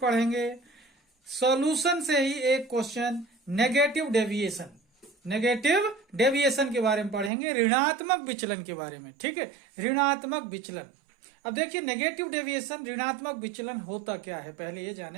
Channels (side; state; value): left; drops out; at 7.3 s